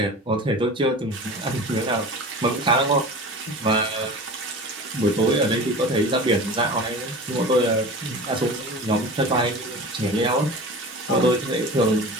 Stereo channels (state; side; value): normal; both; correlation 0.35